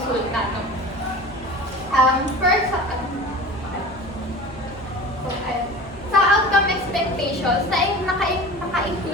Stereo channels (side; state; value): both; normal; correlation 0.37